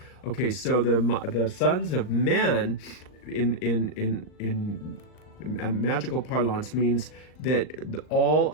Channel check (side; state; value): right; late; 39 ms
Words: Okay, so the sons of men in magical parlance means that all